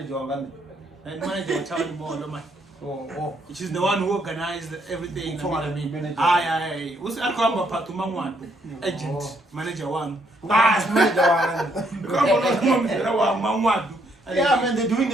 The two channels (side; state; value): both; normal; correlation 0.72